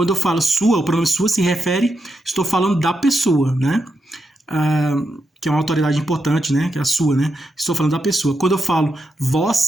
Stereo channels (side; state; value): both; normal; correlation 0.85